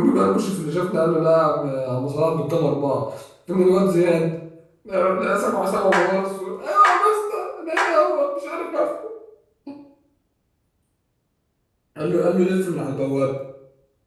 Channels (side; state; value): both; identical; correlation 1.00